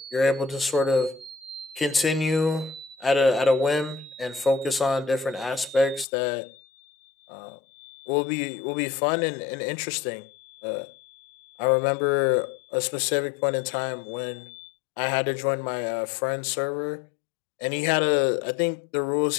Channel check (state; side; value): drops out; right; at 6.1 s